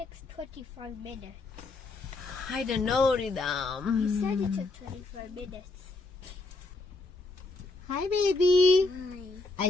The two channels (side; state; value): right; quieter; 3.3 dB